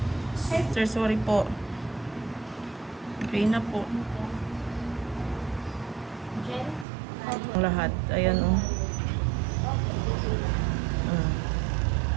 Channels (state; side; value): drops out; left; at 6.9 s